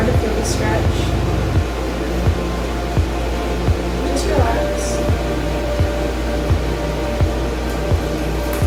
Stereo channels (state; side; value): identical; both; correlation 1.00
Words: feel the stretch. Just relax.